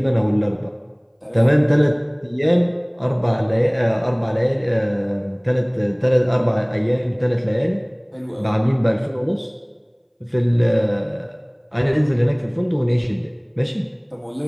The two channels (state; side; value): identical; both; correlation 1.00